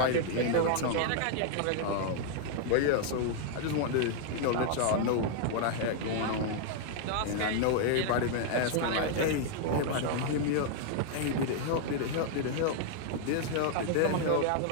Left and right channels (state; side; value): different; both; correlation 0.00